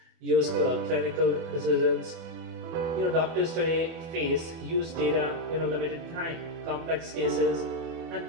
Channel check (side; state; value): left; late; 24 ms